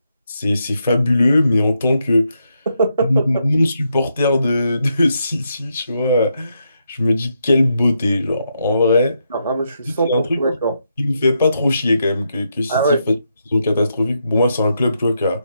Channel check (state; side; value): inverted; both; correlation -0.81